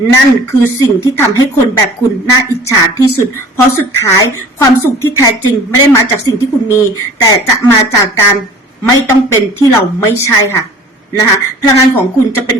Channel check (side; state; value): both; normal; correlation 0.47